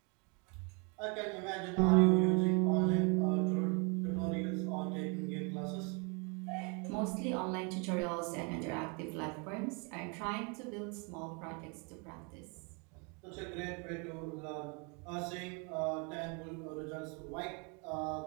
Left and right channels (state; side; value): quieter; left; 34.0 dB